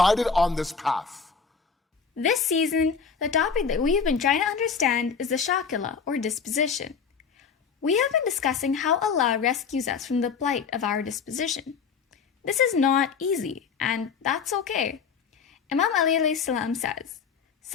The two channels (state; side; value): quieter; right; 6.0 dB